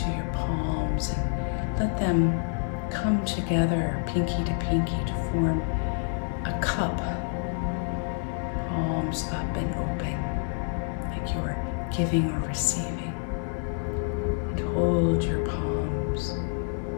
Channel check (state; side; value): silent; right; 56 dB below the other